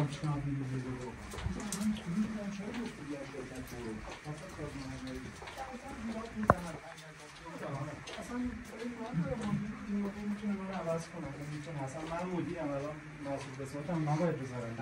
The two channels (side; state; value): both; identical; correlation 1.00